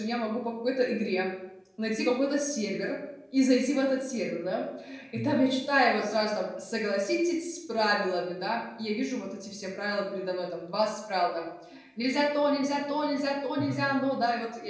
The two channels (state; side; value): identical; both; correlation 1.00